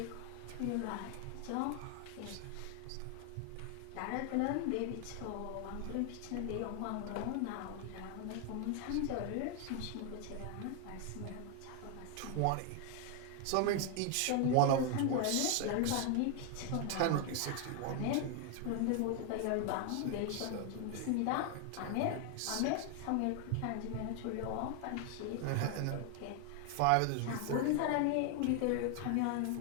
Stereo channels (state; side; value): different; both; correlation 0.00